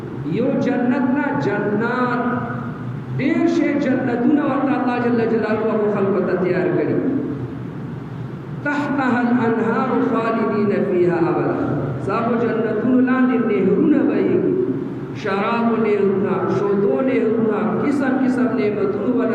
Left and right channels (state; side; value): identical; both; correlation 1.00